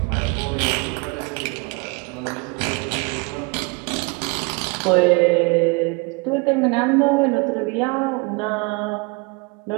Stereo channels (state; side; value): quieter; left; 29.1 dB